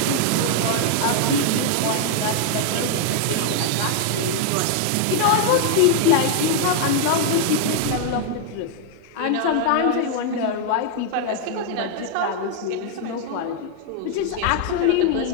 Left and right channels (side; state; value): both; different; correlation 0.00